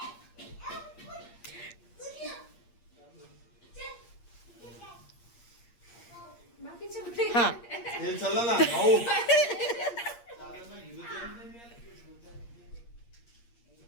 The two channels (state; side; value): late; right; 8.5 ms